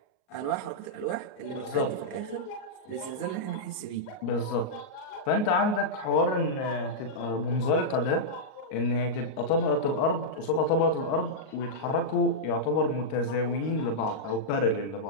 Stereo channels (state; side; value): late; right; 38 ms